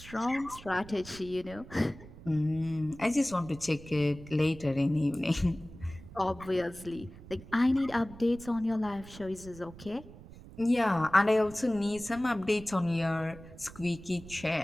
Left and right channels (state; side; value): noise; right; rumble, 17 dB below the sound